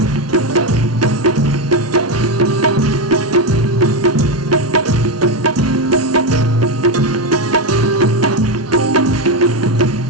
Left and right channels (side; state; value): both; normal; correlation 0.10